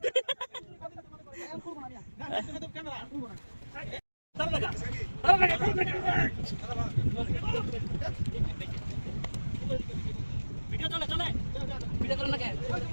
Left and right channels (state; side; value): inverted; both; correlation -1.00